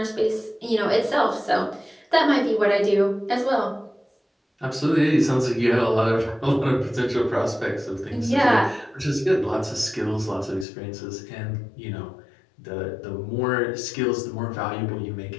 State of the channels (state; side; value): drops out; right; at 10.7 s